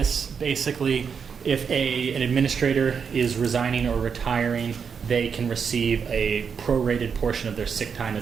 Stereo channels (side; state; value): left; quieter; 6.4 dB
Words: basically, if an administrator is resigning or retiring, they can receive a prorated portion of their sick time